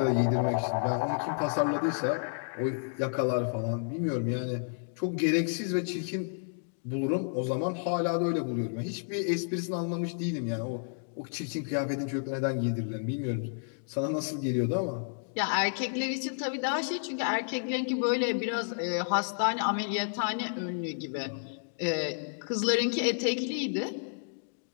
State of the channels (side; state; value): right; silent; digital silence